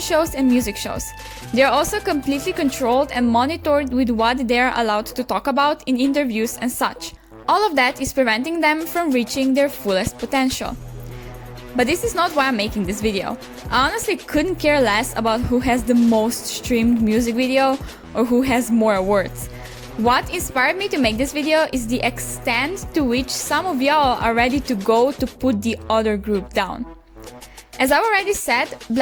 shows and music shows. They are also completely controlled and monitored with what they are allowed to talk about in interviews and such. All of that is preventing them from reaching their fullest potential. But this is not why I'm making this video. I honestly couldn't care less about who has the most streamed music video or who has more awards. What inspired me to make this video is the extent to which some of y'all are ready to go to put the other group down. As I already said,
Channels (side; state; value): both; identical; correlation 1.00